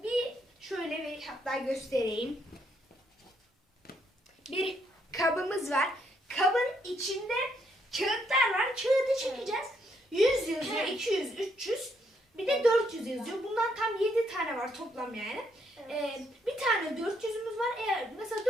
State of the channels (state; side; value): normal; both; correlation 0.73